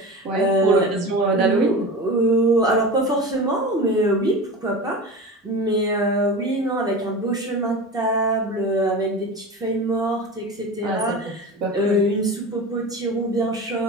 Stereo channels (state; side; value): normal; both; correlation 0.30